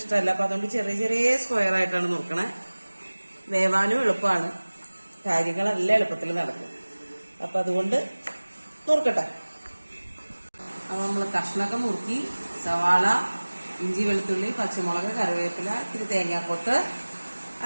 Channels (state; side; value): inverted; both; correlation -1.00